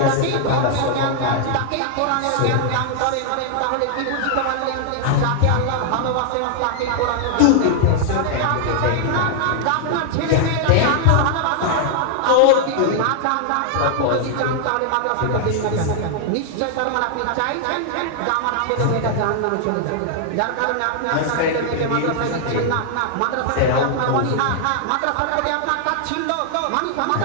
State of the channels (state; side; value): different; both; correlation 0.00